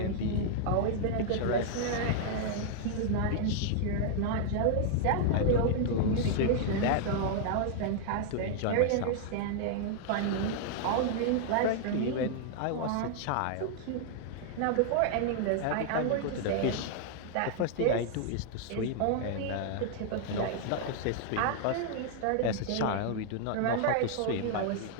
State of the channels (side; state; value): both; different; correlation -0.01